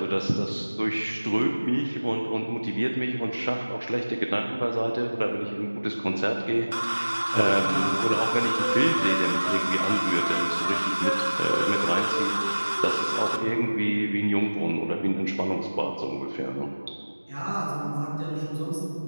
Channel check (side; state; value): both; inverted; correlation -1.00